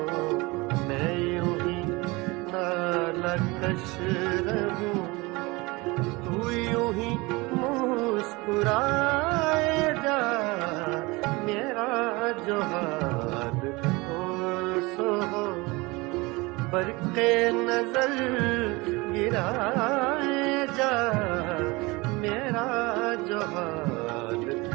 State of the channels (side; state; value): left; quieter; 24.0 dB